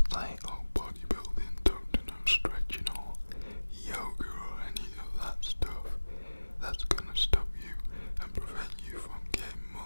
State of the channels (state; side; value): inverted; both; correlation -1.00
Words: say, oh, bodybuilding, don't do no stretching or yoga or any of that stuff. That's gonna stop you and prevent you from getting